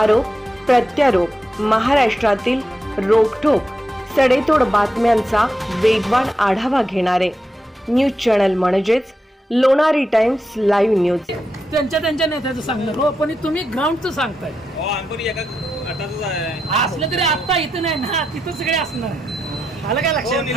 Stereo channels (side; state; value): both; normal; correlation 0.86